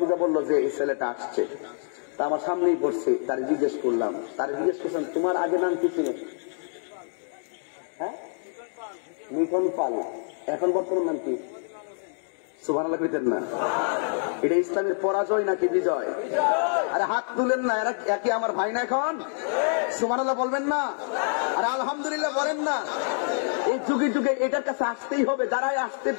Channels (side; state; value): right; silent; 60 dB below the other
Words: বললো যে এই ছেলেটা আসছে, তা আমার সামনেই পড়ছে। তার জিজ্ঞেস করলাম, তোমার আগে নাম কি ছিল? হ্যাঁ, মিঠন পাল। এখন বর্তমান নাম কি? সুবহানাল্লাহ কইতেন না? এটা ইসলামের পরাজয় নাকি বিজয়? আরে হাত তুলেন না, এরা কি আমার ভাই না? এখন সুবহানাল্লাহ বলবেন না? আরে আলহামদুলিল্লাহ বলেন না? এই যুগে যুগে এটার কাছে আসতেই হবে। যারাই আসতে